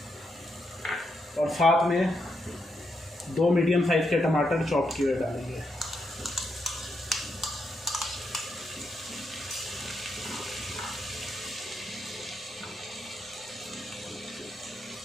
और साथ में 2 मीडियम साइज़ के टमाटर चॉप किए हुए डालेंगे।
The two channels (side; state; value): both; normal; correlation 0.81